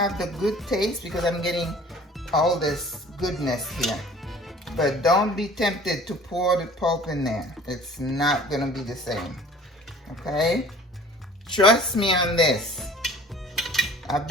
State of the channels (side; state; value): both; normal; correlation 0.49